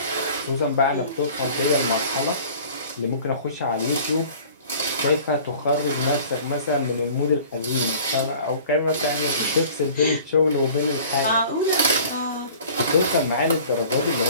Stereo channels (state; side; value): inverted; both; correlation -0.46